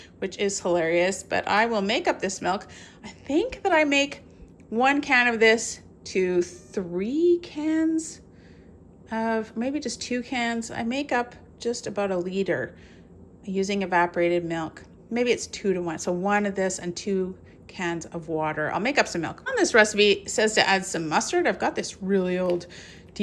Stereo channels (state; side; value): identical; both; correlation 1.00